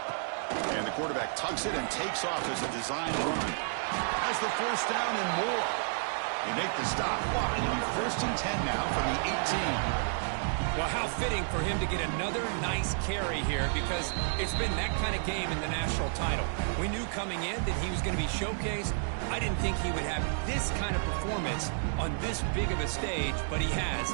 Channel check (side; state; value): left; silent; digital silence